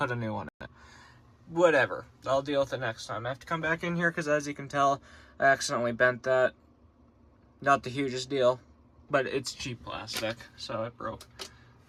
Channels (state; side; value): identical; both; correlation 1.00